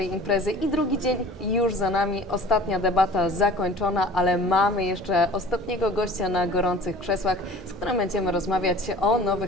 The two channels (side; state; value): both; normal; correlation 0.43